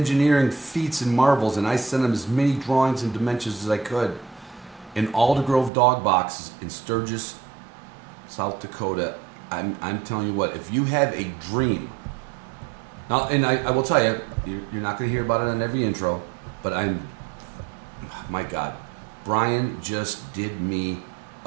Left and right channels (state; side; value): drops out; left; at 5.7 s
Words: feats and marvels, and I sent them as many drawings and dimensions as I could in Alder Grove Dog Boxes in Sturgis, South Dakota. I'm telling you what, if you have a dream, now, and I will tell you, you're not going to hear about it on every intro, but my God, Brian just did me